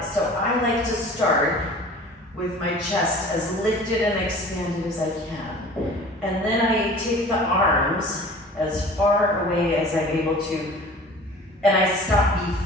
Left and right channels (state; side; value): normal; both; correlation 0.44